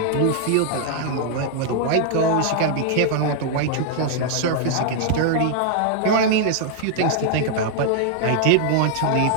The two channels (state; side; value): different; both; correlation -0.01